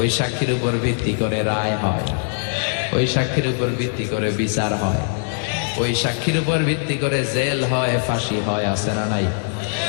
সাক্ষীর উপর ভিত্তি করে রায় হয়, ওই সাক্ষীর উপর ভিত্তি করে বিচার হয়, ওই সাক্ষীর উপর ভিত্তি করে জেল হয়, ফাঁসি হয়, আছে না নাই?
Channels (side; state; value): right; silent; 65 dB below the other